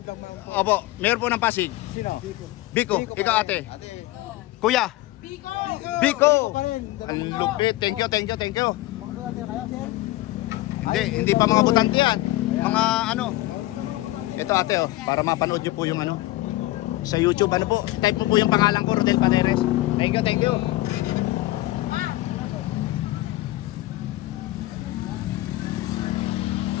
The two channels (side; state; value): right; quieter; 17.8 dB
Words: Opo, mayor po ng Pasig. Sino? Vico, ikaw ate. Kuya? Vico. Ang lupit. Thank you. Hindi pa mga butante yan. Mga ito ate, para mapanood nyo po yung sa YouTube, type mo po yung pangalan ko, Rodel Paneres. Thank you.